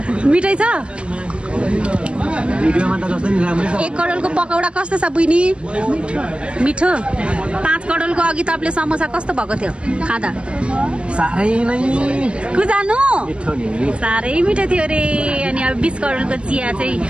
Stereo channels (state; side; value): late; left; 0.058 ms